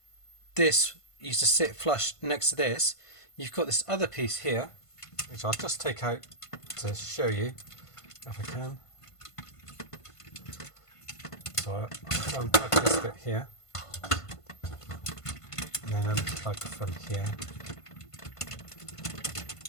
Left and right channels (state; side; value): late; right; 1.5 ms